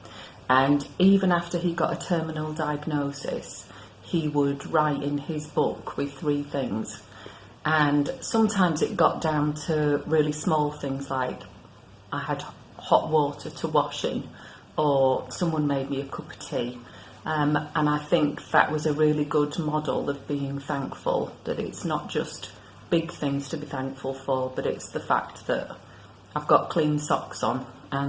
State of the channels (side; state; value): both; identical; correlation 1.00